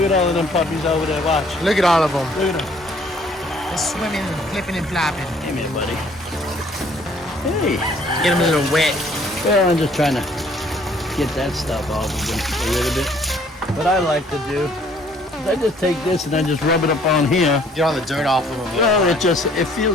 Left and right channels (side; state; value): both; normal; correlation 0.60